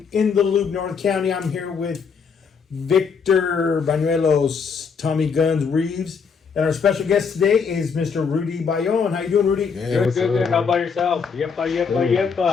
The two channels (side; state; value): right; quieter; 5.9 dB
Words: the Loop, North County. I'm here with Victor Banuelos, Tommy Guns Reeves, and our special guest today is Mr. Rudy Bayon. How you doing, Rudy? Yeah, good. How about yourself?